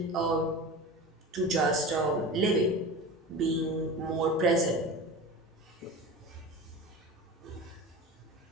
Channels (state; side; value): normal; both; correlation 0.31